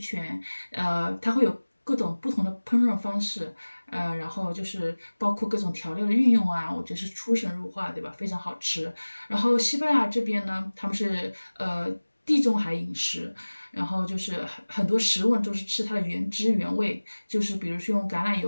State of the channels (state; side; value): inverted; both; correlation -1.00